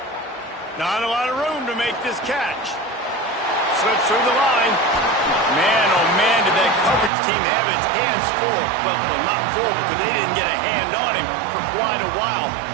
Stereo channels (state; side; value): drops out; left; at 7.1 s